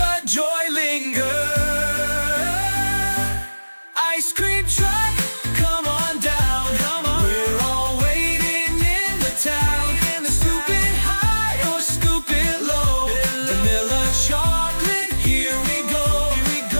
joy linger. Ice cream truck, come on down. Come on. We're all waiting in the town. Scoop it high or scoop it low. Vanilla chocolate, here we go.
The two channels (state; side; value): inverted; both; correlation -1.00